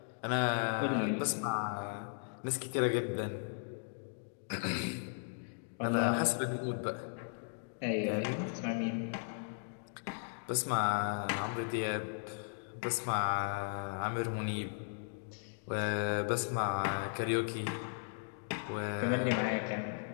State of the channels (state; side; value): silent; right; digital silence